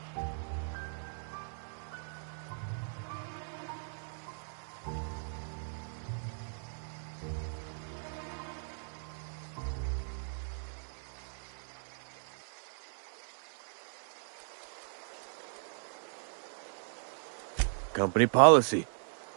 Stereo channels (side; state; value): left; silent; digital silence